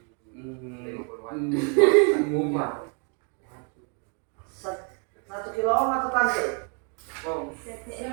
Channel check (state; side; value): quieter; left; 39.8 dB